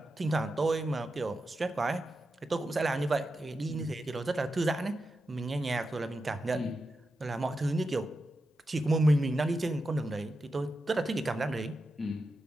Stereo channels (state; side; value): normal; both; correlation 0.89